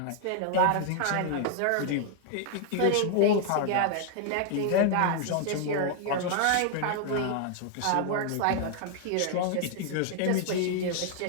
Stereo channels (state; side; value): different; both; correlation 0.00